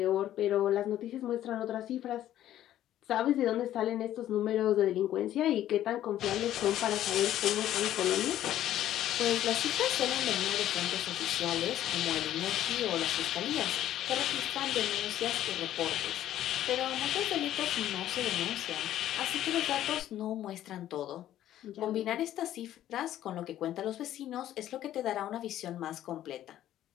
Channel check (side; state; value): right; quieter; 12.5 dB